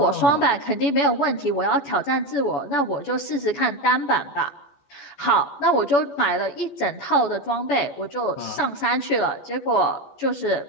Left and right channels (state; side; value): late; right; 14 ms